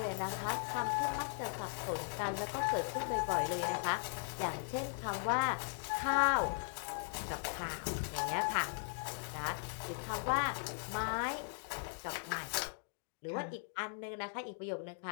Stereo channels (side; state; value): right; silent; digital silence